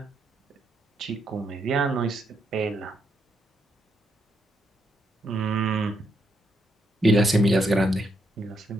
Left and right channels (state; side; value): normal; both; correlation 0.78